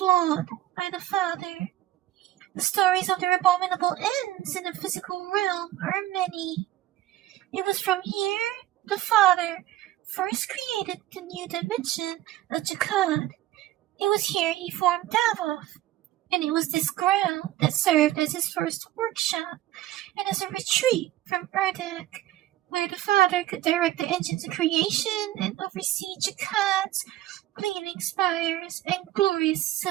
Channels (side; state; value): left; quieter; 14.6 dB